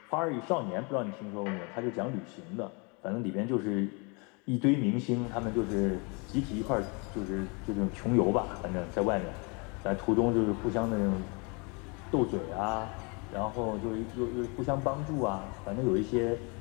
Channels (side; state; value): right; quieter; 31.8 dB